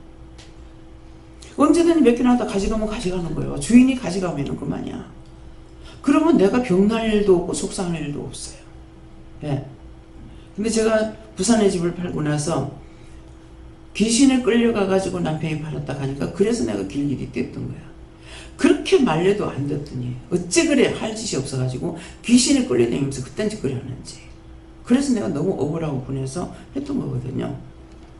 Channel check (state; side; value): identical; both; correlation 1.00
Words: 언제든지 몇 개 놨다 가져가면 가져가는 거예요. 주인이 가져가면 그만이야. 그러면 내가 병날 일도 없고 속상할 일도 없어요. 예. 근데 제가 부산의 집을 팔고 나서 귀신에 끌려가가지고 남편이 팔았다 가니까 그래서 내가 길길이 뗐던 거야. 그렇게 말려도 안 듣더니 어째 그래 할 짓이 없어가지고 귀신에 끌려다니면서 그딴 짓 그래 하는지. 그래서 내가 너무 억울하고 분해서 했던 거거든요.